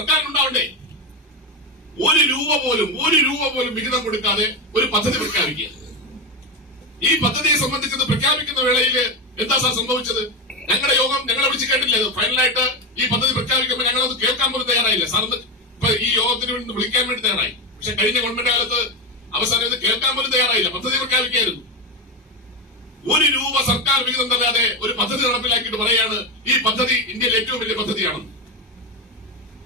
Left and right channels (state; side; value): normal; both; correlation 0.15